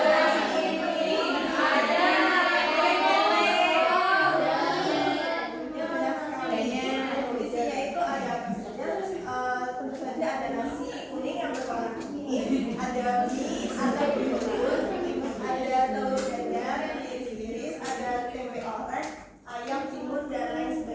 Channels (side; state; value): both; identical; correlation 1.00